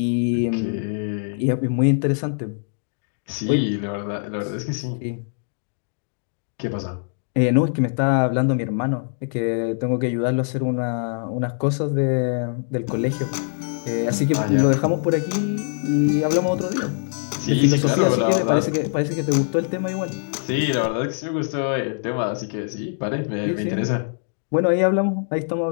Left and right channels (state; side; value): silent; right; digital silence